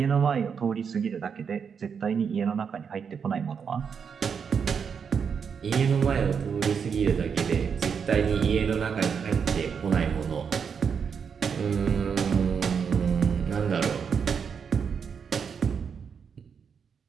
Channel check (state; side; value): quieter; left; 6.6 dB